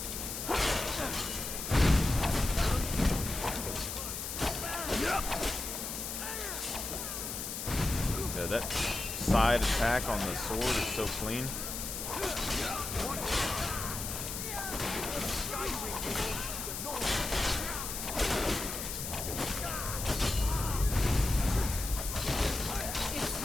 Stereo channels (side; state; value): left; noise; hiss, 5 dB below the sound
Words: Yeah, that side attack on the sword is so clean.